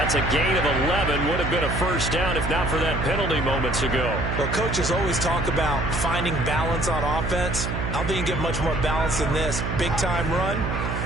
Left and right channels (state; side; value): noise; right; hum, 3 dB below the sound